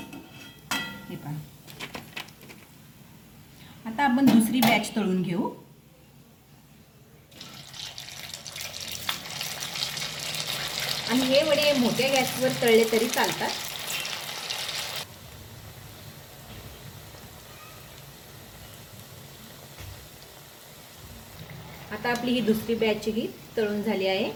हे पहा, आता आपण दुसरी बॅच तळून घेऊ। आणि हे वडे मोठ्या गॅसवर तळले तरी चालतात। आता आपली ही दुसरी बॅच ही तळून झाली आहे।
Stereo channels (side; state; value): both; identical; correlation 1.00